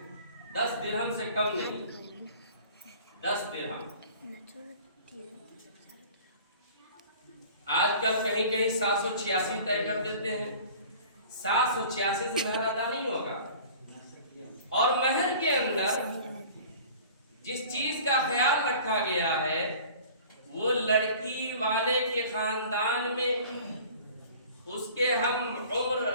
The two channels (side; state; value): both; inverted; correlation -0.45